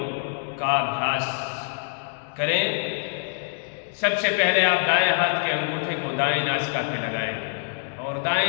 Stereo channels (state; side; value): silent; right; 62 dB below the other